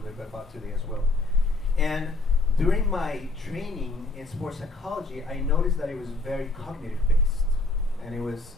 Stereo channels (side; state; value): right; quieter; 3.2 dB